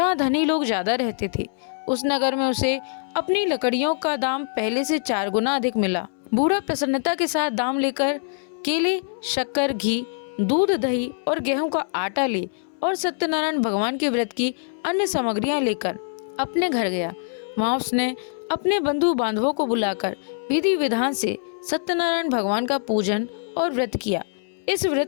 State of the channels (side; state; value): right; silent; 62 dB below the other